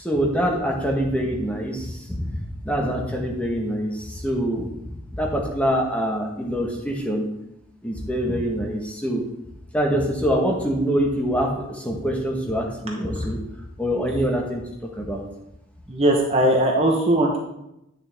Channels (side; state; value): both; normal; correlation 0.55